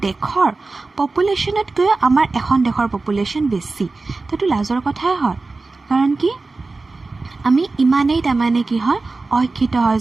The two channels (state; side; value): quieter; left; 3.6 dB